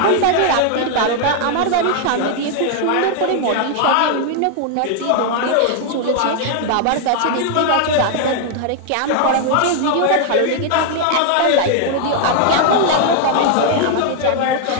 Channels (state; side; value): different; both; correlation 0.00